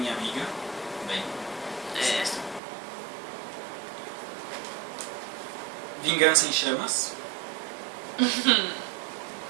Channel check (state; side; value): drops out; left; at 2.6 s